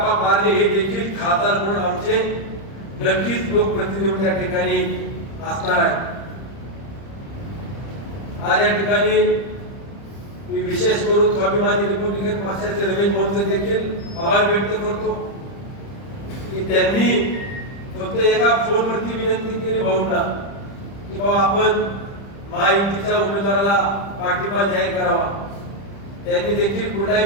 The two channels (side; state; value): right; late; 30 ms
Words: पारणे हे देखील खासदार म्हणून आमचे नक्कीच लोकप्रतिनिधी त्या ठिकाणी असणार आहे. आज या ठिकाणी मी विशेष करून स्वाभिमानी रिपब्लिकन पक्षाचे रमेश भाऊंचे देखील आभार व्यक्त करतो की त्यांनी फक्त एका फोनवरती विनंती केली भाऊंना की बाबा आपण महायुतीच्या उमेदवाराला पाठिंबा जाहीर करावा. त्यांनी देखील कुठलाही